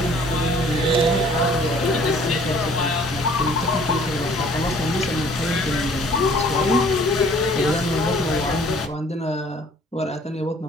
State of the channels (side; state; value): both; normal; correlation 0.55